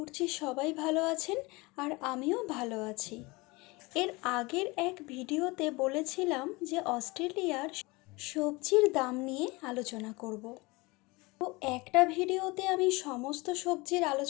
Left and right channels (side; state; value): right; quieter; 24.3 dB